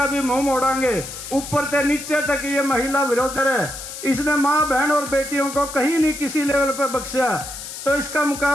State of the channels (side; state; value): left; noise; hiss, 10 dB below the sound